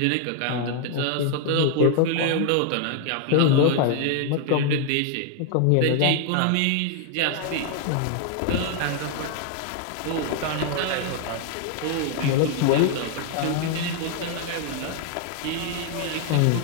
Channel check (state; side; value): different; both; correlation 0.00